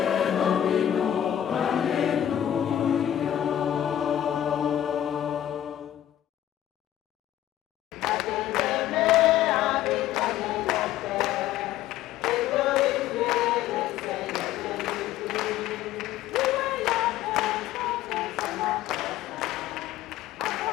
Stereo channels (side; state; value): right; quieter; 11.7 dB